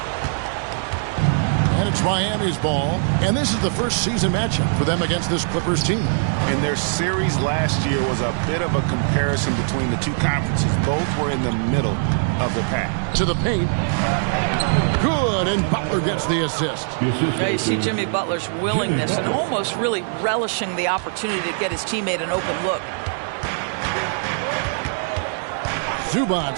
And it's Miami's ball, and this is the first season matchup for them against this Clippers team. And their series last year was a bit of a comparison between the two conferences. Both were in the middle of the pack. To the paint. Good, and Butler gets the assist. Now you see Jimmy Butler's willingness and almost really relishing the opportunity to get his teammate an open look.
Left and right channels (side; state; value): left; silent; digital silence